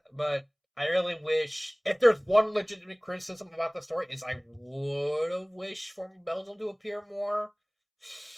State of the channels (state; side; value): identical; both; correlation 1.00